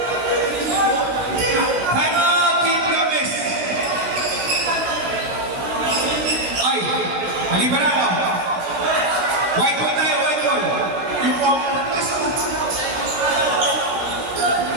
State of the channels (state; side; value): late; left; 17 ms